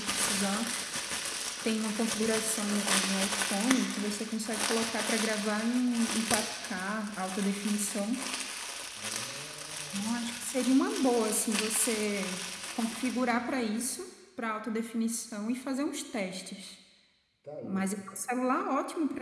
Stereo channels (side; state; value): both; identical; correlation 1.00